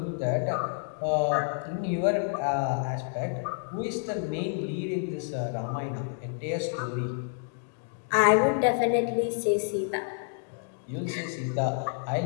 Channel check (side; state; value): right; silent; digital silence